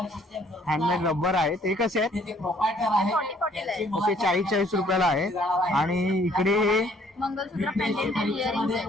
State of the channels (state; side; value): normal; both; correlation 0.62